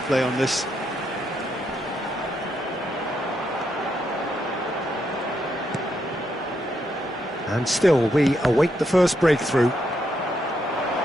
on this. And still, we await the first breakthrough.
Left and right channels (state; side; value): normal; both; correlation 0.79